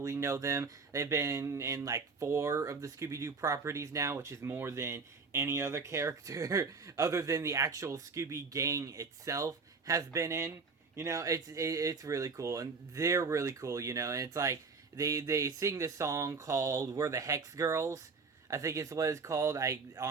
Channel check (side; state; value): left; quieter; 4.6 dB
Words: know them. They've been in like 4 of the Scooby-Doo properties now, which is more than any other character other than the actual Scooby gang itself has been in. You know, it's really cool, and they're really cool, you know, and it's like, They sing this song called "We're the Hex Girls." I think it's what it's called. I